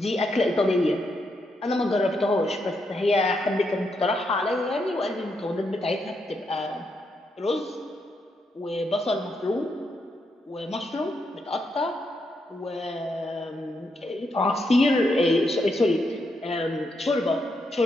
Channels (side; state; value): both; normal; correlation 0.80